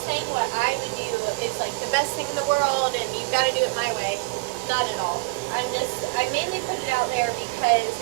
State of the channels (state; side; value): quieter; left; 27.1 dB